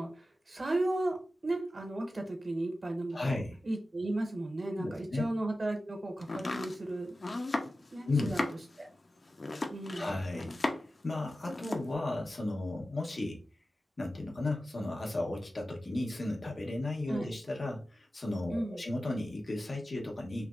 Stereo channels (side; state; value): both; normal; correlation 0.94